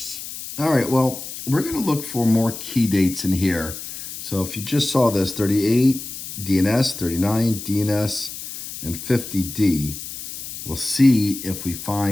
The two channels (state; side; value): noise; left; hiss, 10 dB below the sound